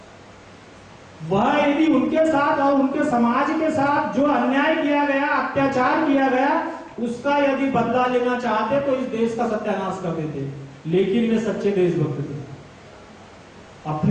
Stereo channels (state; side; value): identical; both; correlation 1.00